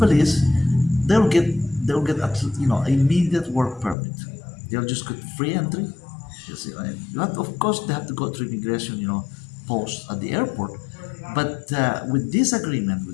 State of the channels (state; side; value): drops out; right; at 4.0 s